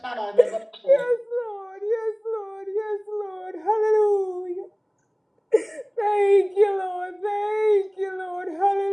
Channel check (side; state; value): both; identical; correlation 1.00